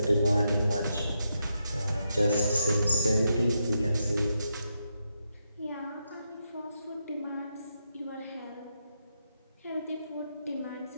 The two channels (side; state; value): both; inverted; correlation -0.83